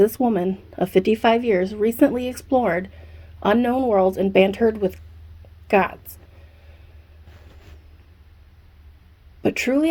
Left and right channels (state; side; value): identical; both; correlation 1.00